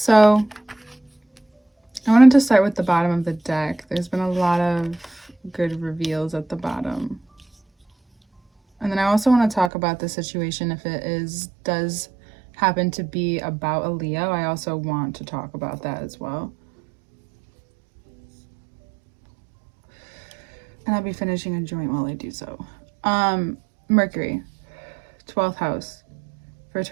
I wanted to start with the bottom of the deck. There's been a lot of good reveals at the bottom. And then I also want to talk about the situation if it does happen to be about a Leo. I also want to talk about that as well. And I'll be finishing a joint while I do so. Mercury, 12th house for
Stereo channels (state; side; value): drops out; left; at 9.7 s